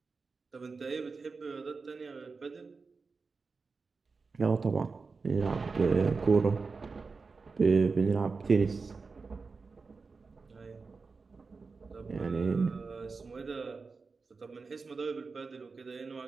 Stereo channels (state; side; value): quieter; left; 4.5 dB